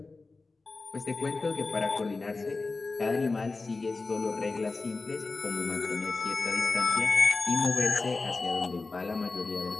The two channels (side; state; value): right; quieter; 3.7 dB